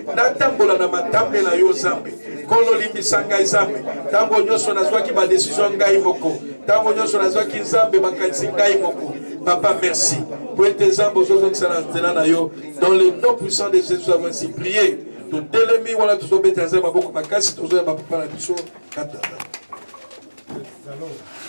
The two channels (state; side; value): inverted; both; correlation -1.00